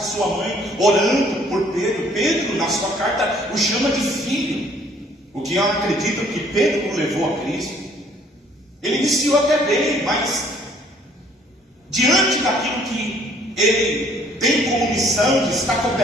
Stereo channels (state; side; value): normal; both; correlation 0.60